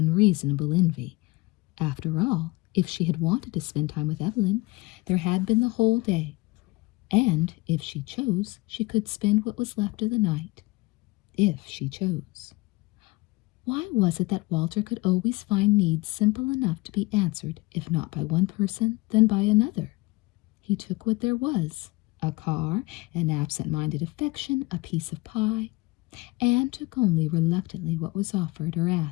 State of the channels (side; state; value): right; quieter; 23.1 dB